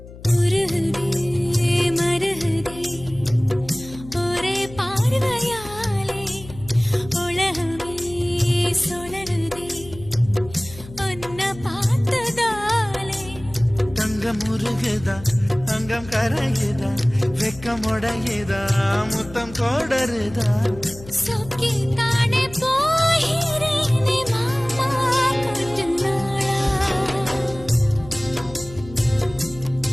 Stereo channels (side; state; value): left; noise; hum, 17 dB below the sound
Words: உருகுதே மருகுதே ஒரே பார்வையாலே உலகமே சுழலுதே உன்னை பார்த்ததாலே தங்கம் உருகுதா அங்கம் கரையுதா வெக்கம் உடையுதா முத்தம் கோடருதா சொக்கி தானே போகிறேனே மாமா கொஞ்ச நாளா